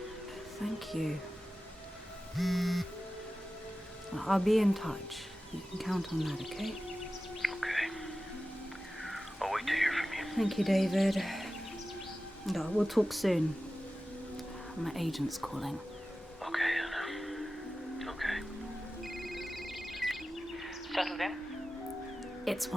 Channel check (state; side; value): normal; both; correlation 0.94